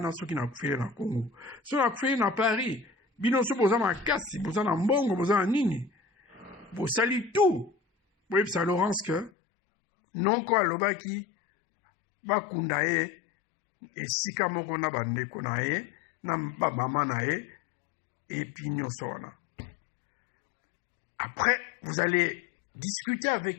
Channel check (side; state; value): right; drops out; at 9.3 s